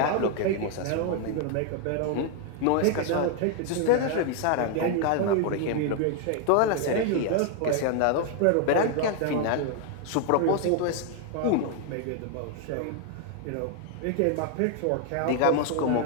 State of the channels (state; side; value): different; both; correlation 0.00